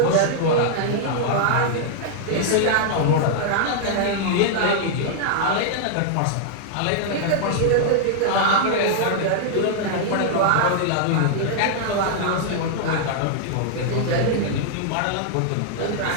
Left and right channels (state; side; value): different; both; correlation -0.01